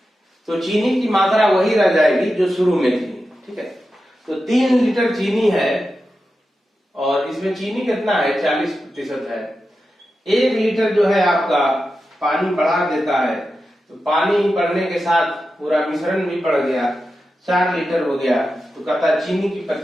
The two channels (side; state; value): both; normal; correlation 0.91